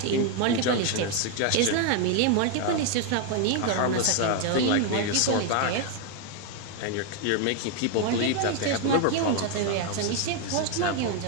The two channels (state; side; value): different; both; correlation 0.01